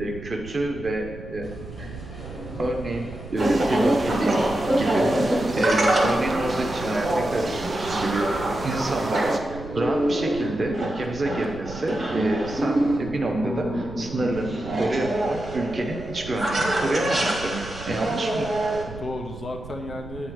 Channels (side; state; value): right; noise; rumble, 13 dB below the sound